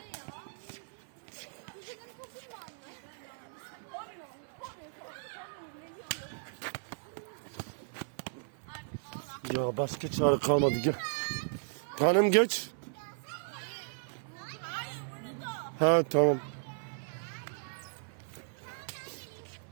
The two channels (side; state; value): left; silent; 54 dB below the other